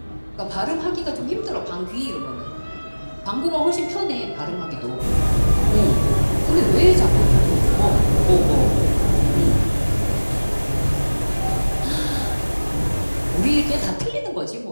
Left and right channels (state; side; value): inverted; both; correlation -1.00